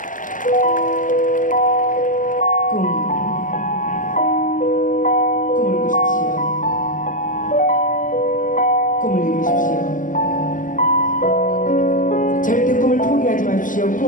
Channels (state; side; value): late; right; 0.38 ms